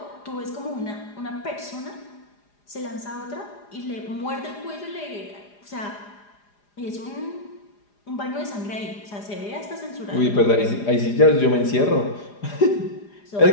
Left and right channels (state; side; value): late; right; 4.9 ms